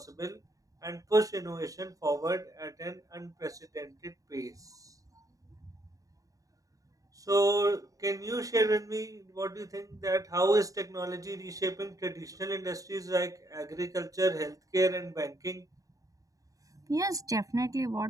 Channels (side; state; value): left; late; 0.16 ms